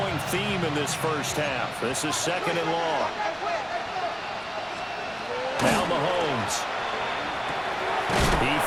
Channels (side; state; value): both; identical; correlation 1.00